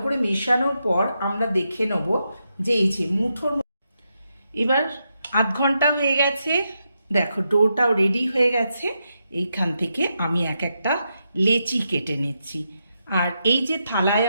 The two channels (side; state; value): both; inverted; correlation -0.84